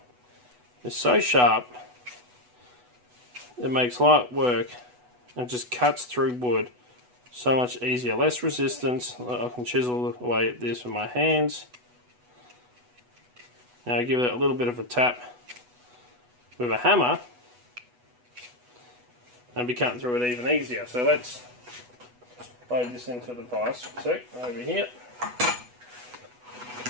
is so sharp it makes light work and just cuts through wood. So much easier, less resistance. I can chisel away at this with my hands. Now give it a little bit of a tap with a hammer and be cutting through it even easier. So let's load this into the vise. So over here.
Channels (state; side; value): late; left; 8.1 ms